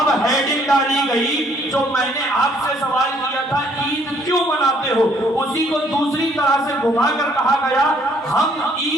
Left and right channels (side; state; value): both; normal; correlation 0.64